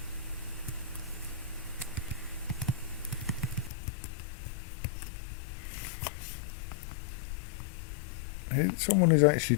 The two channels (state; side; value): drops out; right; at 3.7 s